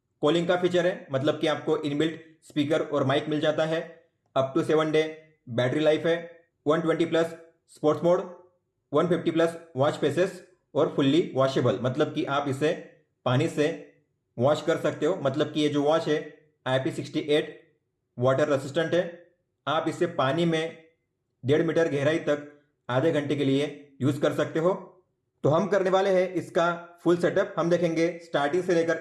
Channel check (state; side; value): identical; both; correlation 1.00